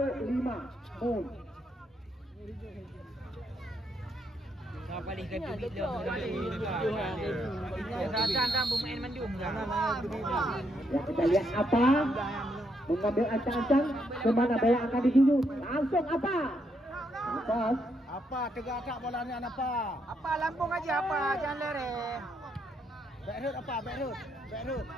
5 Mun. Balik ke bilik dia. Rasa bermain mandum. Ya kita lihat apa mengambil ancang-ancang kemana bola akan dituju. Langsung apa? Atas. Apa tegak bola ni apa? Apa Lampung aja apa jangan lere. Backroot apa? Backroot.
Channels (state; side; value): normal; both; correlation 0.77